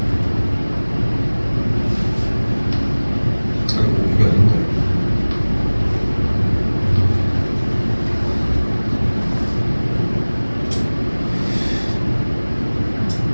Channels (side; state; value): both; inverted; correlation -1.00